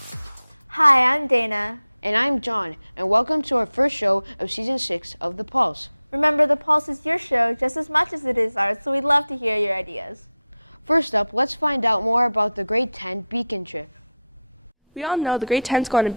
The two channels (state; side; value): inverted; both; correlation -0.82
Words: Hi, I'm Dana. And I'm John, and welcome to our first show of Season 6 of The Pulse. Remember, The Pulse is your show just as much as it is ours, so we'd love to hear your ideas. First up, let's find out more about the Grade 10 Beacon trip.